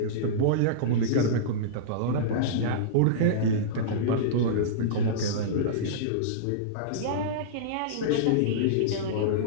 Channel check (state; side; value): different; both; correlation -0.04